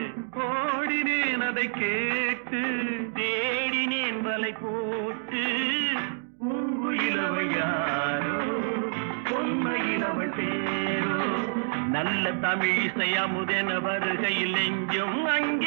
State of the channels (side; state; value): left; silent; digital silence